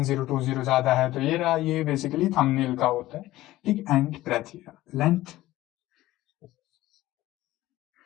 ज्यादा है तो ये रहा, ये बेसिकली थंबनेल का होता है, ठीक। एंड ब्रेथ, लेंथ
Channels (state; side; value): quieter; right; 16.2 dB